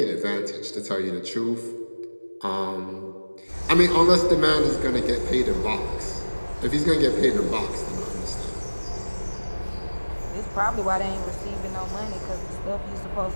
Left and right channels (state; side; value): inverted; both; correlation -1.00